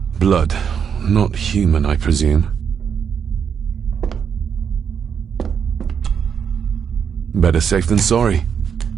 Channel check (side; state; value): left; quieter; 7.3 dB